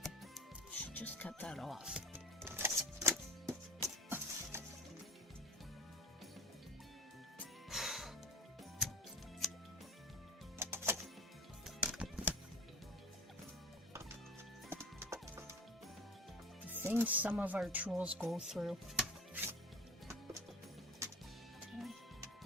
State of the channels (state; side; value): normal; both; correlation 0.39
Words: Should just cut that off. The things some of our tools go through. Okay.